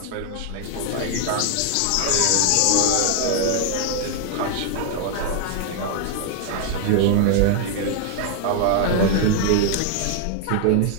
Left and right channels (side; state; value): both; different; correlation 0.00